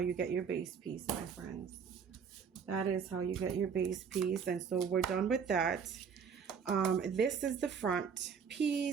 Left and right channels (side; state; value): left; quieter; 6.6 dB